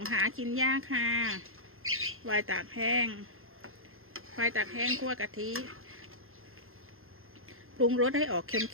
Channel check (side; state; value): left; late; 0.61 ms